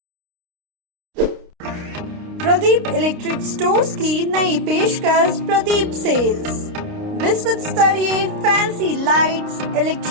प्रदीप इलेक्ट्रिक स्टोर्स की नई पेशकश प्रदीप सेल्स। विश्व स्तरीय fancy lights,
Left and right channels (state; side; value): late; left; 29 ms